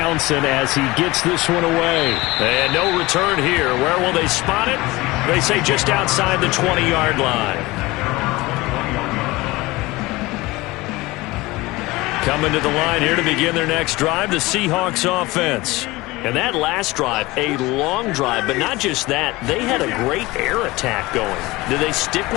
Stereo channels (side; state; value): right; quieter; 20.9 dB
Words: as he gets this one away. And no return here. Where will they spot it? They say just outside the 20-yard line. Coming to the line here to begin their next drive, the Seahawks offense. And that last drive, a long drive, but not just that. They had a great air attack going. Did they stick